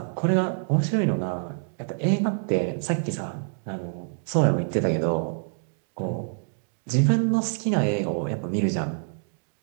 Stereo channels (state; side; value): silent; left; digital silence